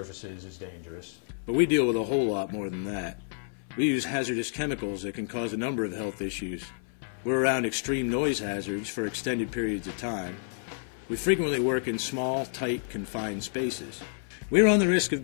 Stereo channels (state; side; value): silent; right; 58 dB below the other